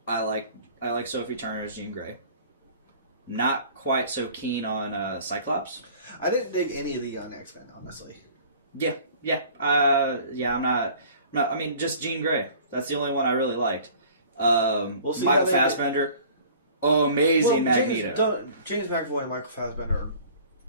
I like Sophie Turner as Jean Grey. Not quite so keen on Cyclops. I didn't dig any of the young X-Men, honestly. Yeah. I'm not. I mean, just Jean Grey. That's the only one I really liked. We'll see Michael Fassbender, amazing Magneto. James McAvoy and Michael Fassbender are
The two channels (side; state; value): both; inverted; correlation -0.48